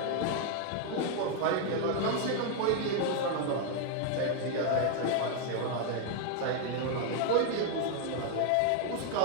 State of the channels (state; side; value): different; both; correlation 0.00